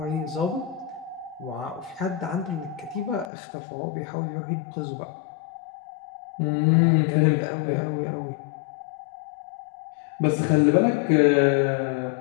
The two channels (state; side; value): drops out; right; at 3.3 s